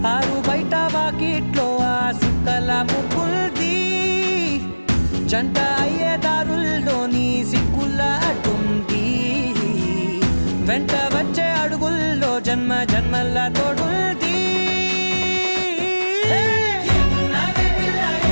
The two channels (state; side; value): inverted; both; correlation -1.00